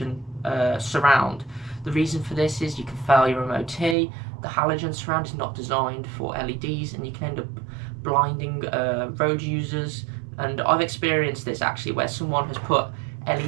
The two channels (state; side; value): drops out; left; at 4.0 s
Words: surround. The reason for this is you can fail your MOT. The halogen surround is not designed for LEDs, and you can end up blinding road users. And I've experienced this actually, where someone has put